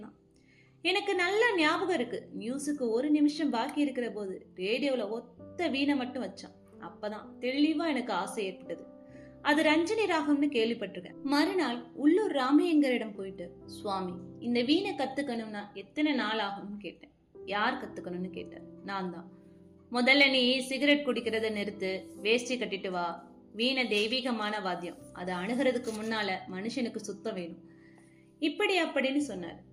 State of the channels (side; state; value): both; identical; correlation 1.00